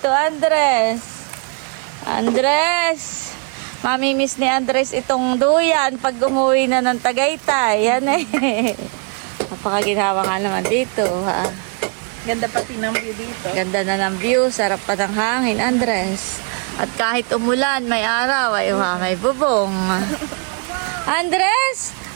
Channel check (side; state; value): left; quieter; 38.5 dB